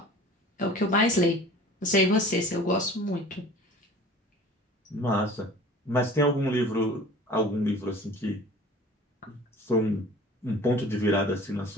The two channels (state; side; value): normal; both; correlation 0.44